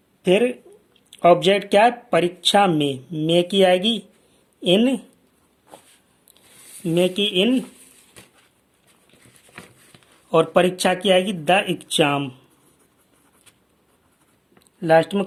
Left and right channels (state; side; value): identical; both; correlation 1.00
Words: फिर ऑब्जेक्ट क्या है? परीक्षा में की आएगी इन, में की इन, और परीक्षा की आएगी द एग्जाम, लास्ट में